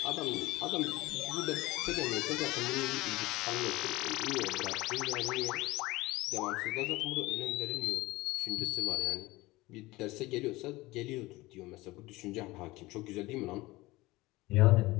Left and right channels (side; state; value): right; quieter; 20.2 dB